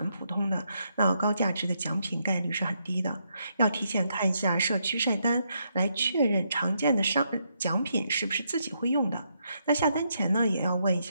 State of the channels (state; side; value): inverted; both; correlation -0.78